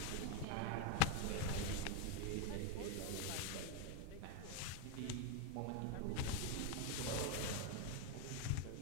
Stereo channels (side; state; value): both; different; correlation 0.01